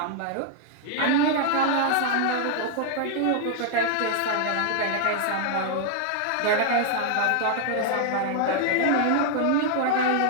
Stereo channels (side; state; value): both; different; correlation 0.00